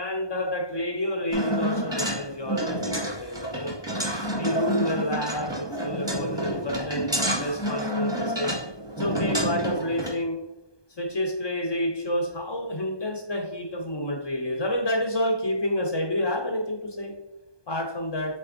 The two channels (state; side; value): late; right; 1.2 ms